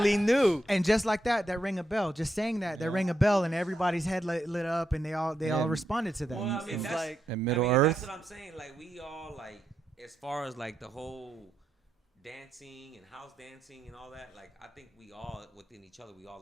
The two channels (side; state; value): both; normal; correlation 0.83